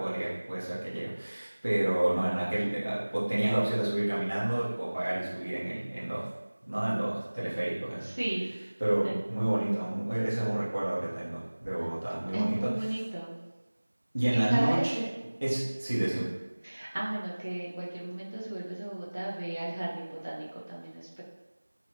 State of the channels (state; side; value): inverted; both; correlation -1.00